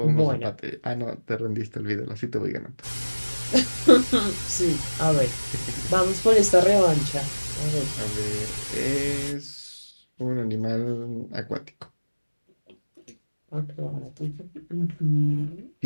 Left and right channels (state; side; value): inverted; both; correlation -1.00